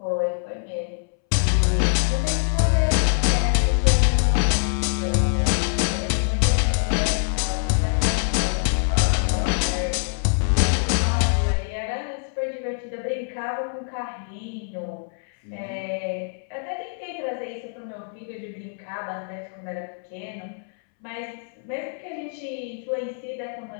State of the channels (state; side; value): silent; right; 62 dB below the other